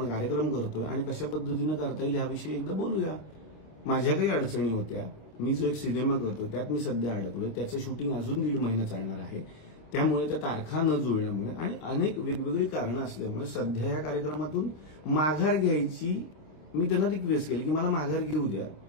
कार्यक्रम करतोय आणि कशा पद्धतीनं करता येईल ह्याविषयी एकदा बोलूया. माझ्या काही अडचणी होत्या. मी जो एक सिनेमा करतोय त्यात मी सध्या अडकलोय, त्याचं शूटिंग अजून 1.5 महिना चालणार आहे. त्यामुळे त्या तारखा न जुळल्यामुळे आणि अनेक वेगवेगळी कारणं असल्यामुळे सध्या या कार्यक्रमातून माघार घ्यायची मी त्यांना रिक्वेस्ट केली की मला माघार घेऊ द्या.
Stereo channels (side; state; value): right; late; 26 ms